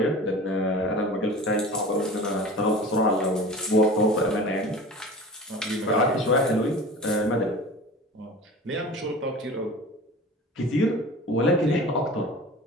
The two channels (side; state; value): both; normal; correlation 0.38